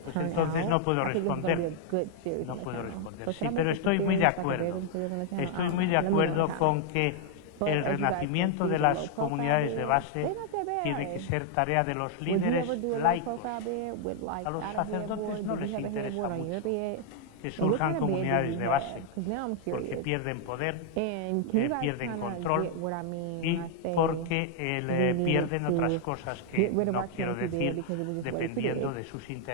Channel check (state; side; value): different; both; correlation 0.00